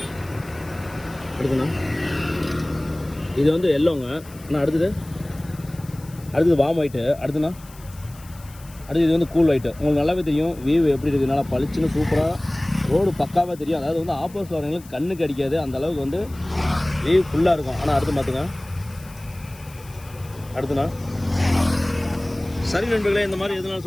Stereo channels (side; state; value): left; noise; hiss, 22 dB below the sound